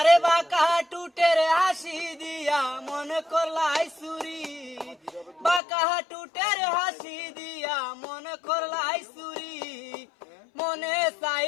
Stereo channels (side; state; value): right; drops out; at 5.6 s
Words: বাঁকা টুটের হাসি দিয়া মনে করলাই চুরি, বাঁকা টুটের হাসি দিয়া মনে করলাই চুরি। মনে